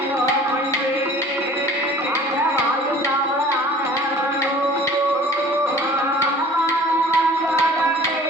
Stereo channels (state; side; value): normal; both; correlation 0.47